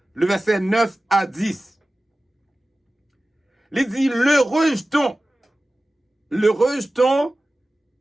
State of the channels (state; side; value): normal; both; correlation 0.96